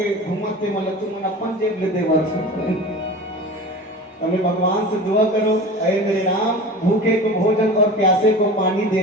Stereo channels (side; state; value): both; normal; correlation 0.35